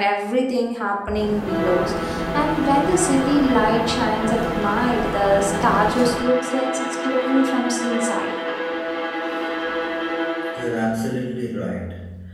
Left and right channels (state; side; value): identical; both; correlation 1.00